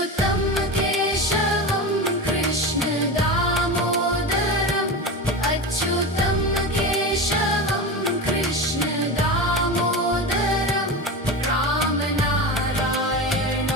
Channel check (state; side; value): normal; both; correlation 0.24